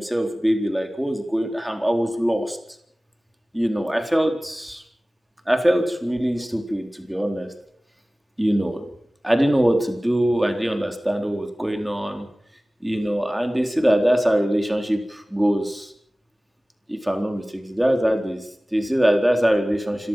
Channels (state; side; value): normal; both; correlation 0.98